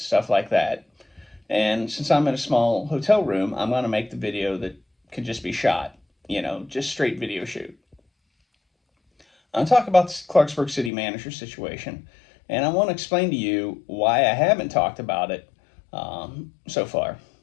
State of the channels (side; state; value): right; drops out; at 10.9 s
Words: like that. And since I'm in a small hotel room, I'm going to make the video that can just be shot, just straight video shoot. I'll talk about the Clarksburg City Manager situation, and I want to explain to you why I haven't talked about it so far.